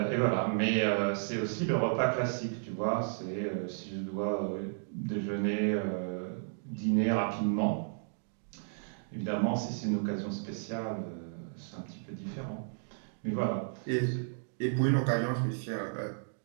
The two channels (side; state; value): left; silent; digital silence